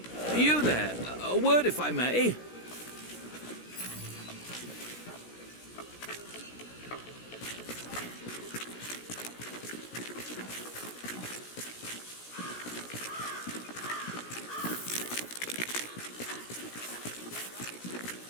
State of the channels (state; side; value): late; right; 17 ms